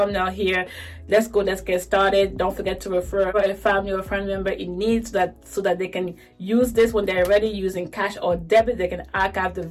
here, let's get started. Don't forget to refer a family or friend member in need, so that they can use this when they're ready using cash or debit. They can archive the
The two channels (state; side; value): identical; both; correlation 1.00